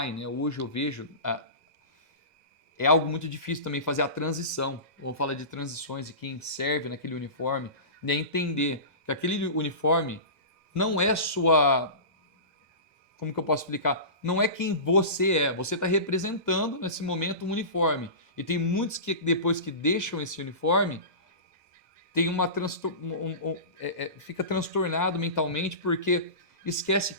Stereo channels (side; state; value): left; late; 2.0 ms